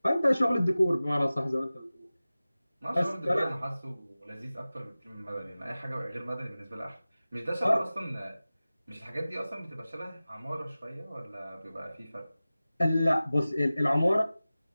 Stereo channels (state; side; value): inverted; both; correlation -0.97